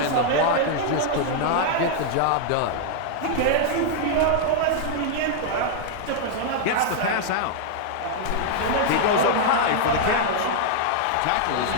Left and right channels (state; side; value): different; both; correlation -0.01